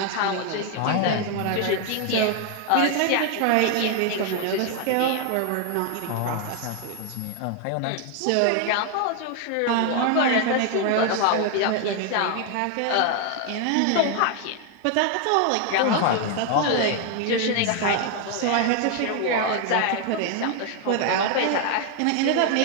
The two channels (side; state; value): both; different; correlation 0.01